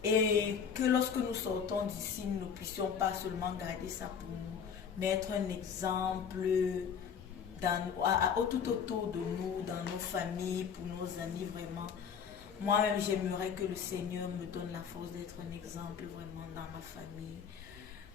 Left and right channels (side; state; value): right; quieter; 7.1 dB